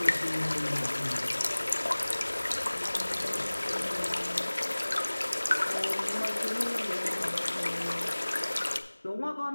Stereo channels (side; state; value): both; inverted; correlation -1.00